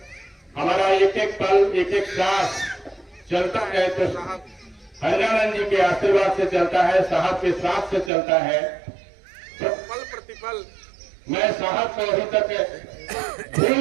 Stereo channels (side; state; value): left; drops out; at 8.1 s